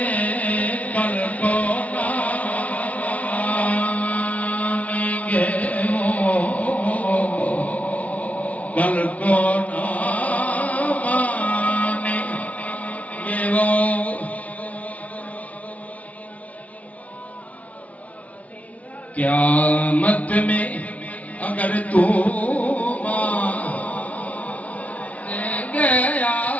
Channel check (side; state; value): right; late; 0.068 ms